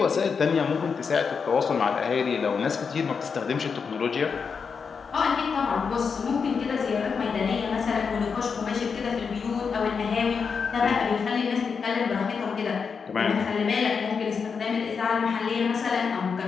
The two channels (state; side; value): quieter; right; 5.7 dB